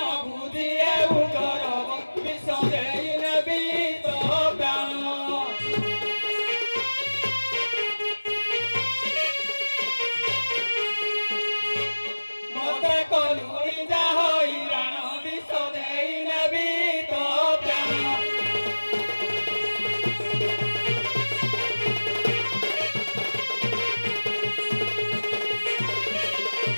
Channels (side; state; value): both; inverted; correlation -1.00